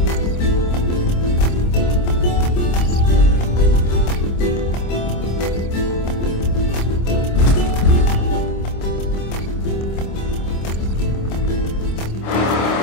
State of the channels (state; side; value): late; right; 26 ms